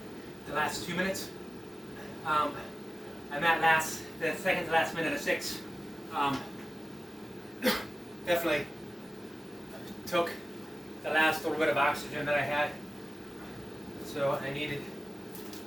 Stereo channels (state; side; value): normal; both; correlation 0.96